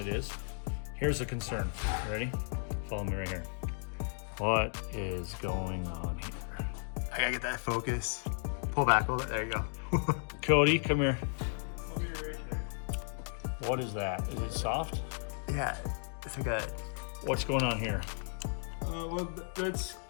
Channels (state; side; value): silent; right; digital silence